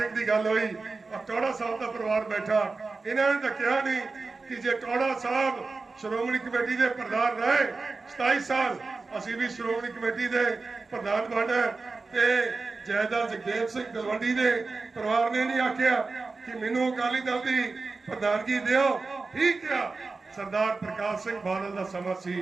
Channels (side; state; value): left; quieter; 3.9 dB